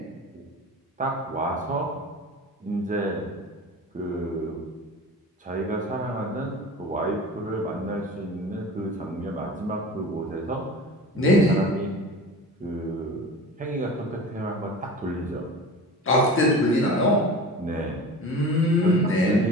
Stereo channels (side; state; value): both; normal; correlation 0.35